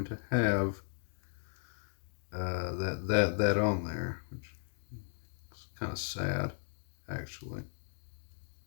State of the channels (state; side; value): silent; right; digital silence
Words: to have that on there, which is kind of sad, actually.